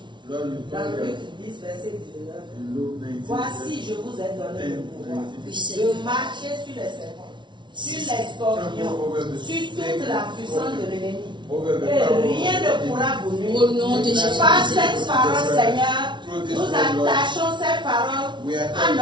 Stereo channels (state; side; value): late; left; 0.23 ms